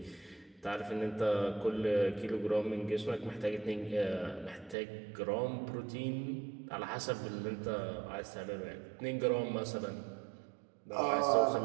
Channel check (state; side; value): drops out; left; at 4.8 s